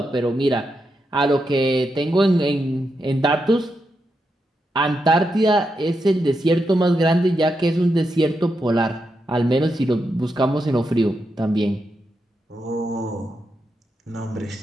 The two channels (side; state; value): both; normal; correlation 0.85